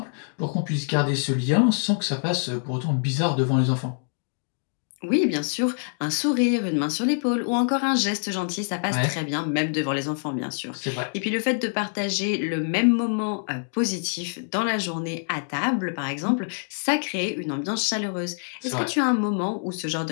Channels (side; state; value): right; silent; digital silence